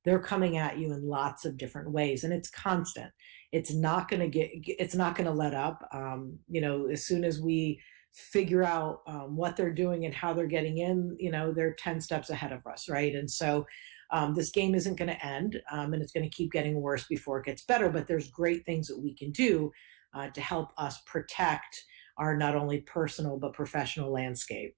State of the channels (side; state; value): left; quieter; 31.9 dB